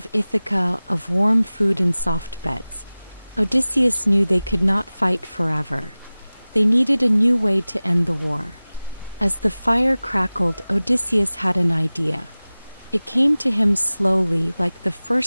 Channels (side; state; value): both; inverted; correlation -0.98